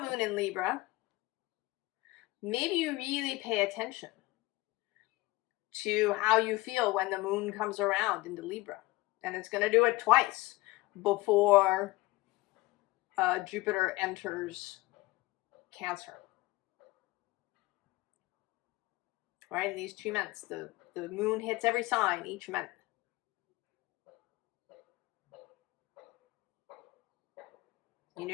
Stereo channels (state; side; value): quieter; right; 20.6 dB